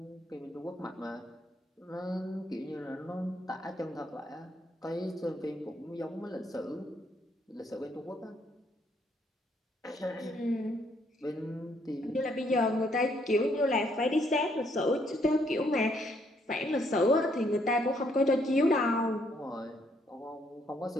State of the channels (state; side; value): normal; both; correlation 0.70